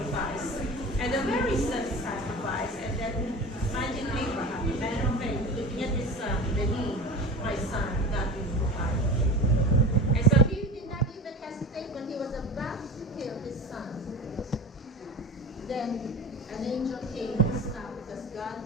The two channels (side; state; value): both; normal; correlation 0.32